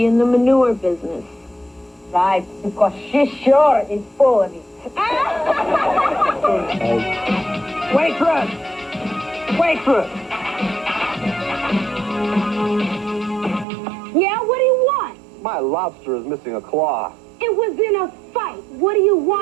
in the manure business. outside because she sure is full of it. Waitress! Waitress! Yeah, what do you want? My lobster is missing a claw. It was in a fight. What do you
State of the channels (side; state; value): left; drops out; at 13.7 s